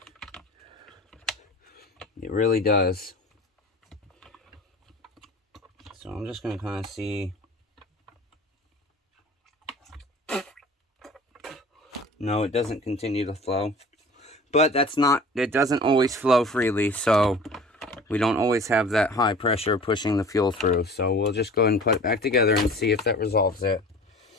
It really does. So I'm just going to kind of see. No, it doesn't continue to flow. But that's not, it doesn't always flow freely, so we don't always have that high pressure pushing the fuel through. So we'll just go ahead and put it back together and see if that resolves it.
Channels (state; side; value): normal; both; correlation 0.42